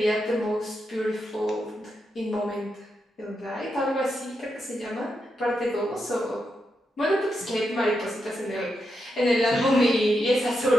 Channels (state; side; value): normal; both; correlation 0.85